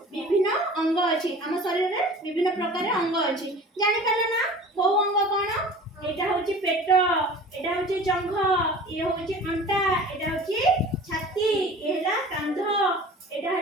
विभिन्न अंग अछि हम शरीर रे विभिन्न प्रकार अंग अछि जानि पाले ना को अंग कोन एटा होची पेट एटा होची जंघ ये होची अंटा एटा होची छाती एला कांध एटा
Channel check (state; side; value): normal; both; correlation 0.42